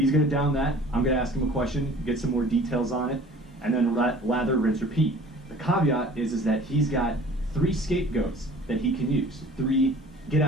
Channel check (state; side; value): normal; both; correlation 0.48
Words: going to down that. I'm going to ask him a question, get some more details on it, and then lather, rinse, repeat. The caveat is that he's got 3 scapegoats that he can use. 3 get